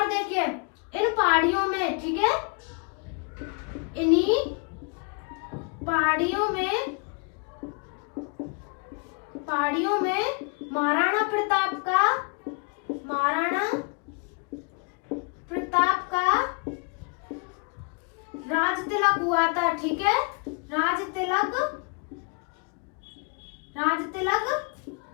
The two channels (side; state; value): right; quieter; 36.2 dB